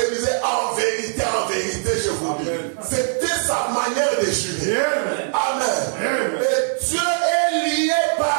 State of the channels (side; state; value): left; silent; 57 dB below the other